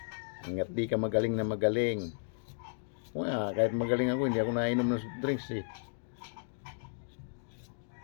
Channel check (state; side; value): silent; right; digital silence